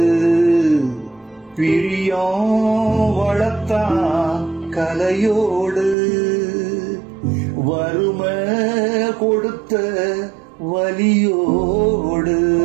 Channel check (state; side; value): drops out; left; at 6.0 s